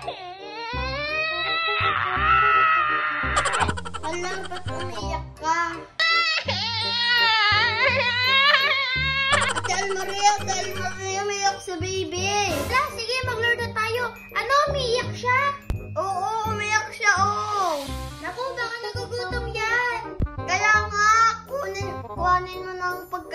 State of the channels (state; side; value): identical; both; correlation 1.00